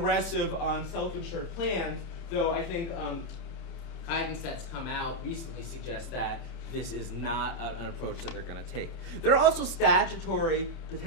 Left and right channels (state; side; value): late; right; 30 ms